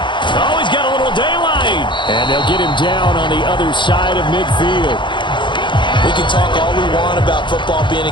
he's got a little daylight. And they'll get him down on the other side of midfield. We can talk all we want about football being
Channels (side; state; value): right; late; 0.23 ms